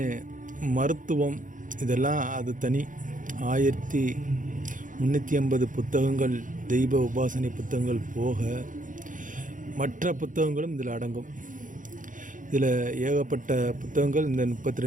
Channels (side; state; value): left; late; 0.38 ms